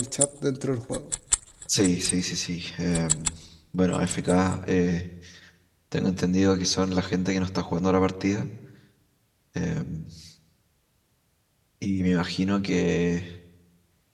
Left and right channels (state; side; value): identical; both; correlation 1.00